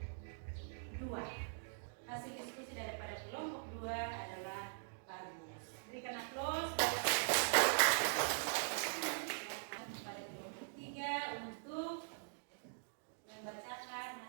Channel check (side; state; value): left; silent; digital silence